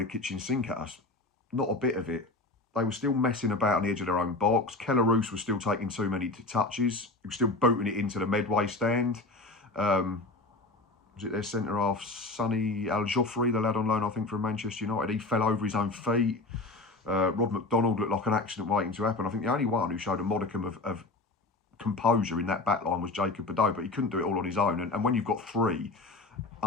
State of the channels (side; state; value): right; quieter; 3.1 dB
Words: kitchen sink at us. Not a bit of it. They were still messing about on the edge of their own box. Keller Roos was still taking too many touches. He was still booting it into the Medway stand. Was it their centre-half, Sonny Al-Joffrey, the lad on loan, I think, from Manchester United? He fell over his own feet. Rob McDonald looked like an accident waiting to happen. I think the only one who showed a modicum of composure in that back line was Jacob Bedeau, but he couldn't do it all on his own. And when you've got three